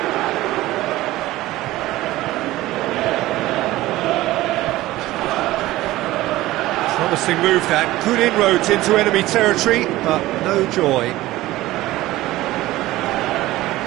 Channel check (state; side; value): quieter; left; 17.0 dB